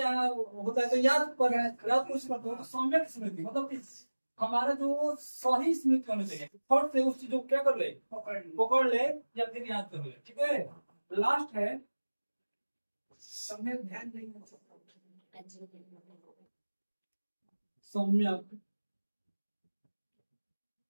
होता है तो याद कुछ करते हो। तो सम्यक स्मृति मतलब कि हमारा जो सही स्मृति होना चाहिए, फट से उस चीज को क्या कर ले, पकड़ ले या फिर याद कर ले। ठीक है। लास्ट है सम्यक ध्यान नहीं, सम्यक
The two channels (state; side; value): inverted; both; correlation -1.00